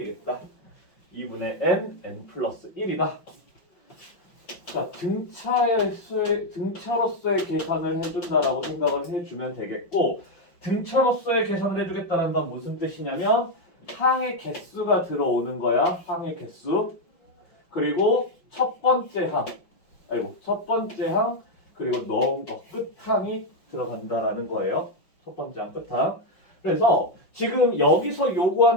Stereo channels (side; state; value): right; late; 5.6 ms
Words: 2분의 n 플러스 1이다. 자, 등차로서의 계산을 해준다라고 생각을 해주면 되겠고, 등차로서의 계산을 해주겠다는 건 무슨 뜻이냐면 항의 개수가 들어오는 거야. 항의 개수. 그리고 첫 번째 항 그리고 넣은 거 끝항이 들어간다라는 거예요. 첫 번째 항 끝항. 그래서 지금 여기서